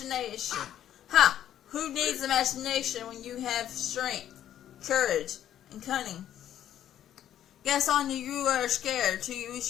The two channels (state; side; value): quieter; right; 11.1 dB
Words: Ha! Who needs imagination when you have strength, courage, and cunning? Guess on you are scared to use